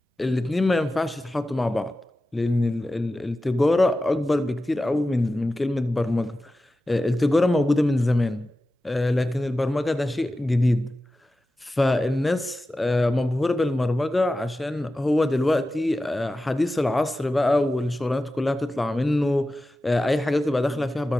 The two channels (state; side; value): normal; both; correlation 0.94